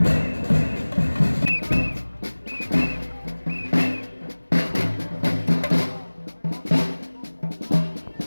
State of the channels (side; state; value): both; inverted; correlation -1.00